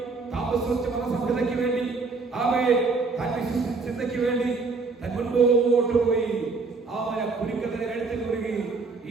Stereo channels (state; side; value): quieter; left; 4.2 dB